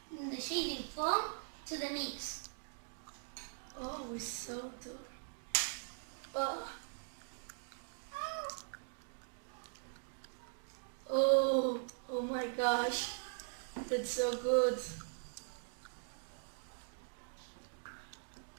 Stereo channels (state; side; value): silent; left; digital silence